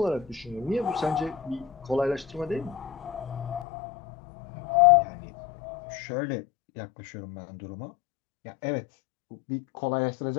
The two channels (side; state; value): right; drops out; at 3.7 s